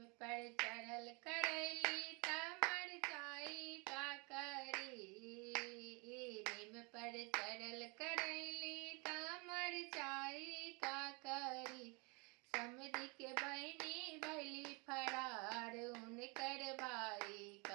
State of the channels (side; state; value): left; quieter; 30.7 dB